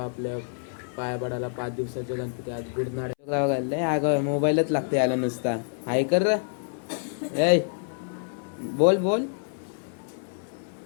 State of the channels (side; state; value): right; silent; 60 dB below the other